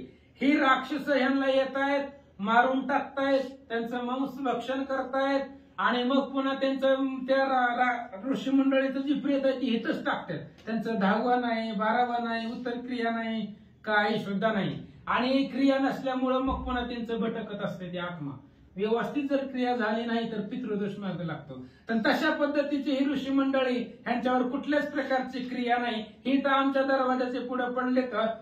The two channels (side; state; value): both; identical; correlation 1.00